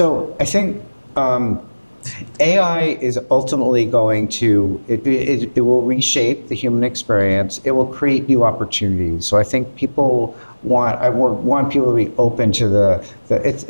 I think AI is ultimately going to, it will reshape the human experience. It will create new opportunities. So I think I want people to be open to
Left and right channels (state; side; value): inverted; both; correlation -1.00